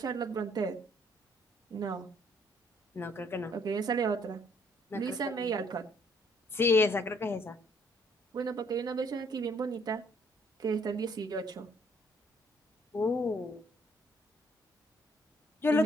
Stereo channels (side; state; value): both; normal; correlation 0.65